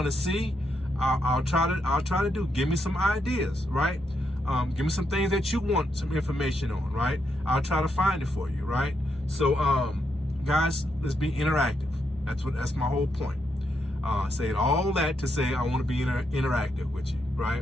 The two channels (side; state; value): both; normal; correlation 0.80